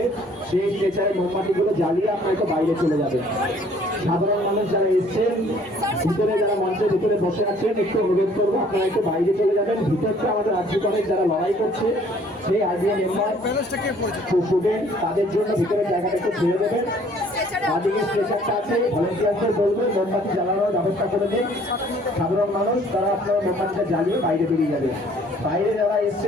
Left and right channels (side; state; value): both; normal; correlation 0.58